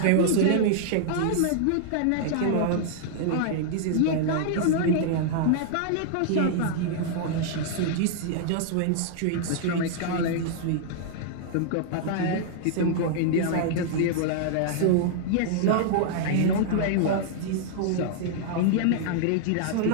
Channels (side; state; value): both; different; correlation -0.01